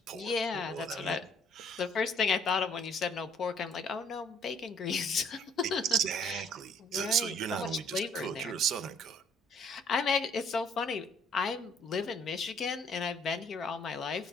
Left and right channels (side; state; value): both; normal; correlation 0.62